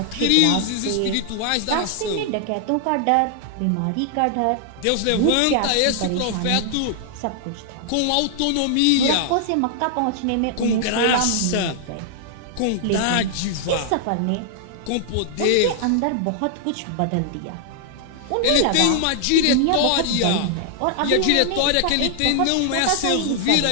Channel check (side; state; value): both; different; correlation -0.01